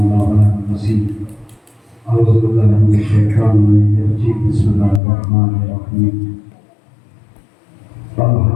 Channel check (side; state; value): right; drops out; at 5.0 s